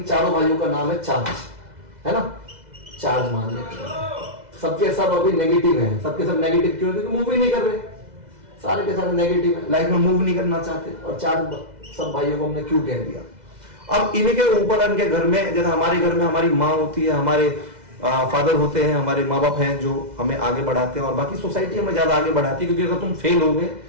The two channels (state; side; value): late; left; 2.0 ms